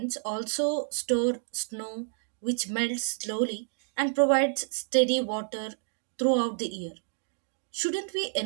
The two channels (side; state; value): left; silent; 58 dB below the other